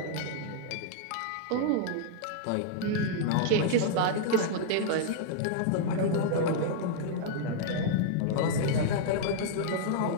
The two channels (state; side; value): different; both; correlation -0.01